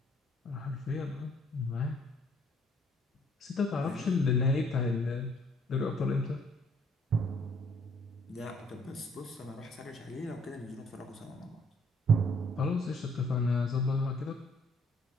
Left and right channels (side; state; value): both; normal; correlation 0.63